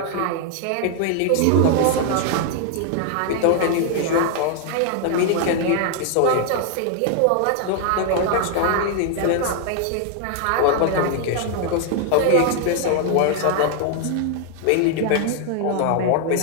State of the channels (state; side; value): different; both; correlation 0.00